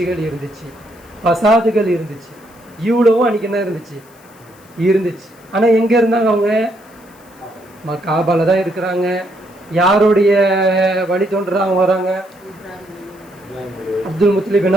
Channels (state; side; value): noise; left; hiss, 28 dB below the sound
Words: இருந்துச்சு, பசாதுகள் இருந்துச்சு. இவ்வளவும் அன்றைக்கி என்ன இருந்துச்சு. ஆனால் எங்கே இருந்தாங்க அவங்க? காபால தான் இருக்கிறாங்க. யாருடைய வழி தோன்றா அவங்க வராங்க? அப்துல் முத்தலிப்